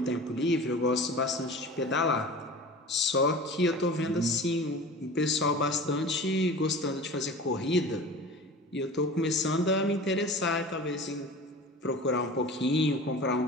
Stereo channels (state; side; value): normal; both; correlation 0.37